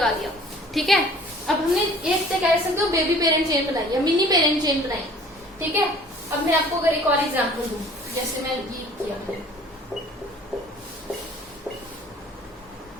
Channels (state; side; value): normal; both; correlation 0.51